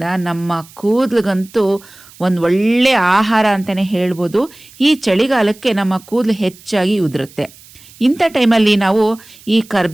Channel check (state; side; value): noise; right; hiss, 23 dB below the sound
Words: ನಮ್ಮ ಕೂದಲಿಗಂತೂ ಒಂದು ಒಳ್ಳೆಯ ಆಹಾರ ಅಂತಲೇ ಹೇಳ್ಬೋದು. ಈ ಚಳಿಗಾಲಕ್ಕೆ ನಮ್ಮ ಕೂದಲು ಹೆಚ್ಚಾಗಿ ಉದುರುತ್ತೆ. ಇಂಥ ಟೈಮಲ್ಲಿ ನಾವು ಈ